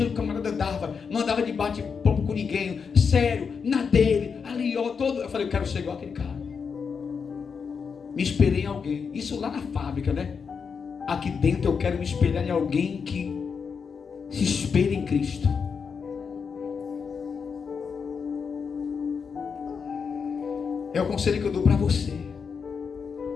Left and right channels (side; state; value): right; quieter; 5.9 dB